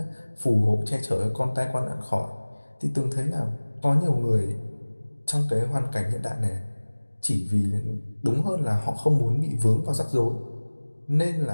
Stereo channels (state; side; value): inverted; both; correlation -1.00